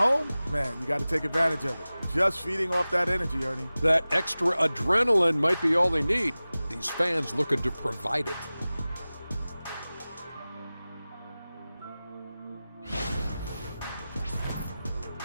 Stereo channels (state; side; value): inverted; both; correlation -0.97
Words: man, you got to take advantage of it. Just feeding off that energy, Ernie. That extra adrenaline might be all they need. These fans looking to provide it.